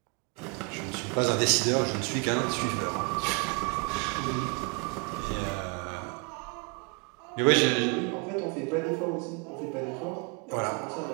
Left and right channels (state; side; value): quieter; left; 33.4 dB